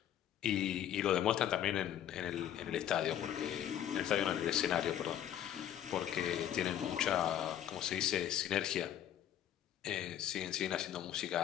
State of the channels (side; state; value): right; quieter; 10.8 dB